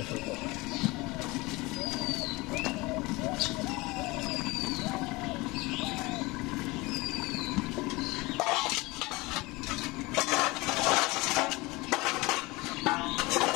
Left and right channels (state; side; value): quieter; right; 22.9 dB